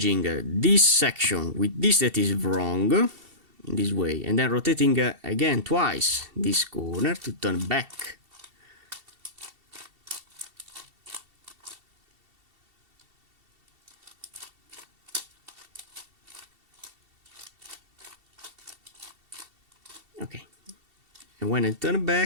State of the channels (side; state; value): left; late; 2.7 ms